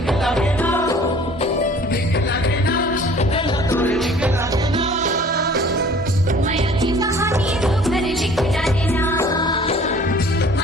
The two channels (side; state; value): both; normal; correlation 0.50